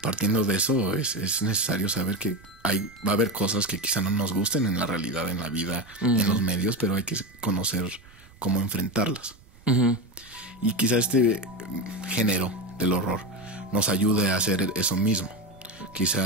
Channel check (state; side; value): noise; right; rumble, 25 dB below the sound